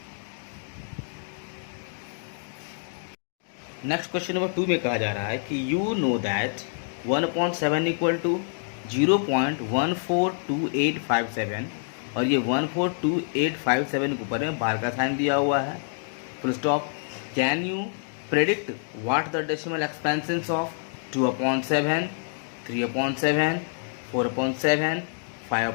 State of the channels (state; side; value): silent; right; digital silence